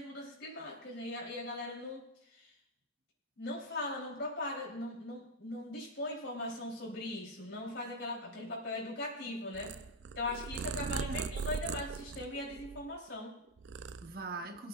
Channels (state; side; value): normal; both; correlation 0.04